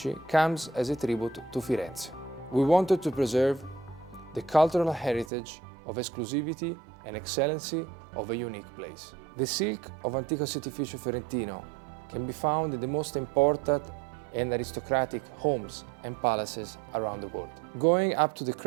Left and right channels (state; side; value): drops out; left; at 5.3 s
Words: comes as a tribute to Firenze. We wanted to preserve the cultural heritage of exclusivity and excellency of a unique place. The silk of Antico Setificio Fiorentino can be found in the most important and aristocratic homes and palaces around the world. Going up to the